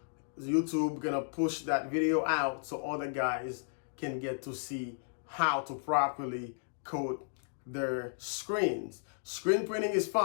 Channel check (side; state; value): right; silent; digital silence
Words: YouTube gonna push that video out so other guys can get to see how to properly coat their screens. Screen printing is